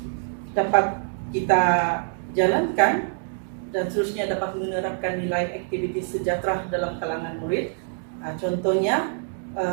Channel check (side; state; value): left; silent; digital silence